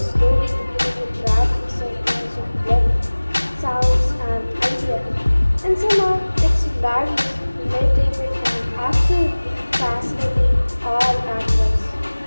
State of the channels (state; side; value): inverted; both; correlation -1.00